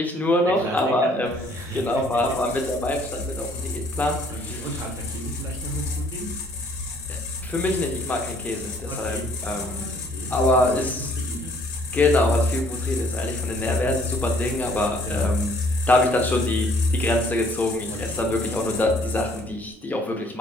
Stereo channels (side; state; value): both; normal; correlation 0.61